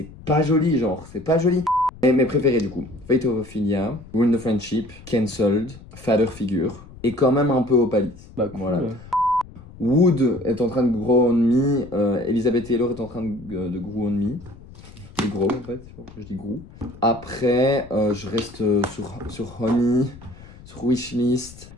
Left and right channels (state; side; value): noise; left; rumble, 19 dB below the sound